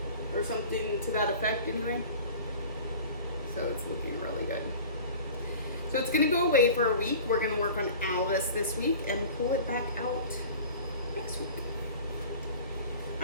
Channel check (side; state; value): both; inverted; correlation -0.41